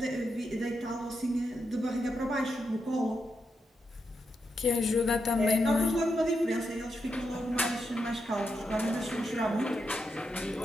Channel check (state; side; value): normal; both; correlation 0.84